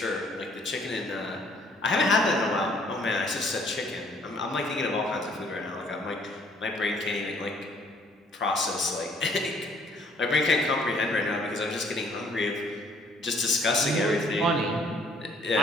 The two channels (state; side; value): normal; both; correlation 0.61